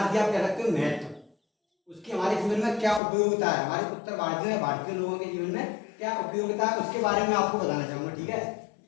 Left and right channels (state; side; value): drops out; right; at 3.0 s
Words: आप कह सकते हो महत्व। उसकी हमारे जीवन में क्या उपयोगिता है, हमारे उत्तर भारतीय लोगों के जीवन में क्या उपयोगिता है, उसके बारे में आपको बताना चाहूंगा। ठीक है,